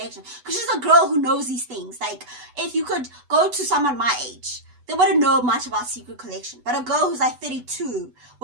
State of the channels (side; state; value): left; late; 8.1 ms